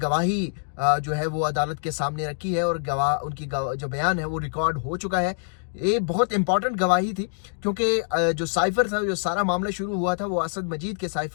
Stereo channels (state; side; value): silent; right; digital silence